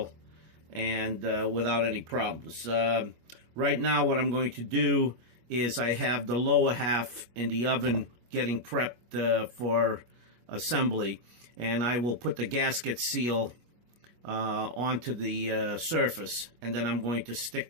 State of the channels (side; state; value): left; late; 25 ms